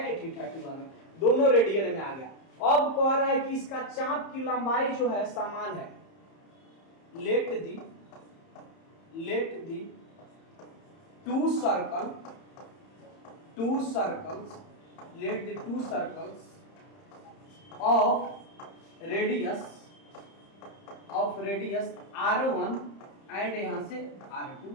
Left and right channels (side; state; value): right; late; 30 ms